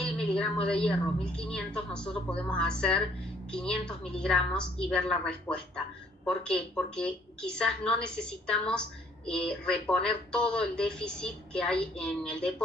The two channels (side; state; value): both; normal; correlation 0.63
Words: miligramos de hierro, 1500, nosotros podemos hacer 500 miligramos y ver la respuesta. ¿Por qué? Porque quizás no necesitamos reponer todo el déficit que hay en el